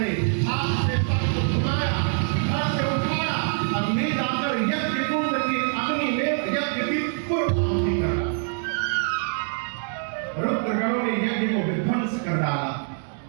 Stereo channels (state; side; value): silent; left; 57 dB below the other